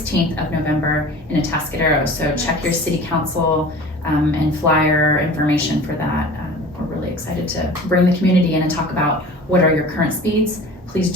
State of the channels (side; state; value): both; normal; correlation 0.40